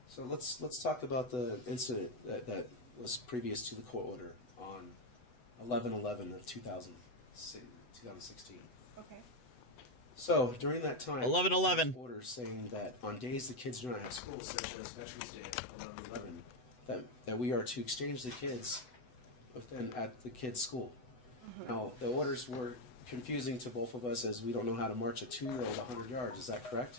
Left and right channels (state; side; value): late; right; 8.0 ms